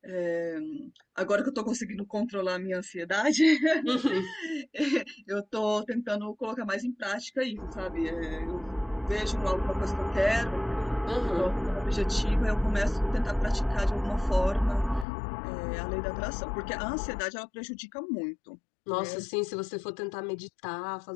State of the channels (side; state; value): right; drops out; at 15.1 s